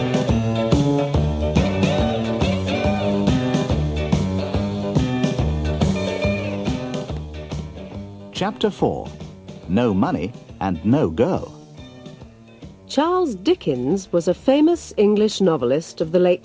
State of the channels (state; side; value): identical; both; correlation 1.00